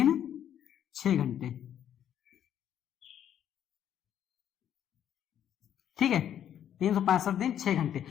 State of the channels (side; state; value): right; quieter; 10.0 dB